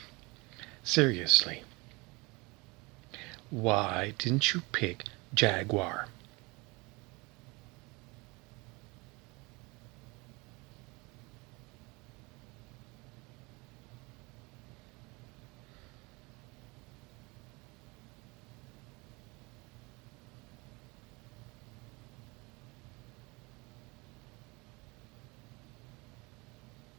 seriously, why didn't you pick jaguar?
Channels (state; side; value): quieter; left; 26.0 dB